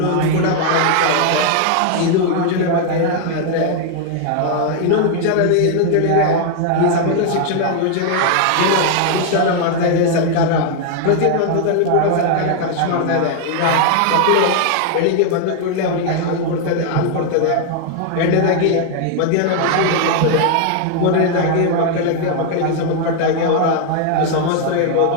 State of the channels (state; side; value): different; both; correlation 0.00